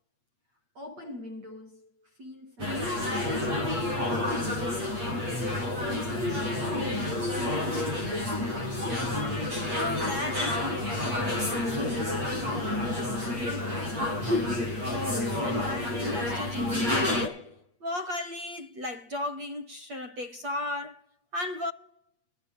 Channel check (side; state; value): left; late; 8.4 ms